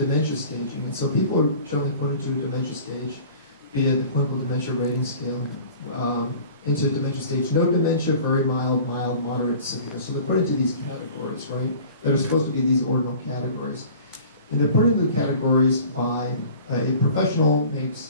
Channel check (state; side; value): inverted; both; correlation -0.45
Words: staging. And so people are generally put into a dementia stage via the clinical dementia rating scale, into dementia stage. No dementia, very mild, mild, moderate, severe. So they're put into these categories, right? That are supposed to be these ordinal categories. And they're put into the categories by a professional